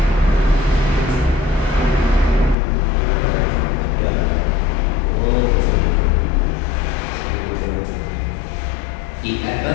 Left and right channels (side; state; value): right; drops out; at 2.6 s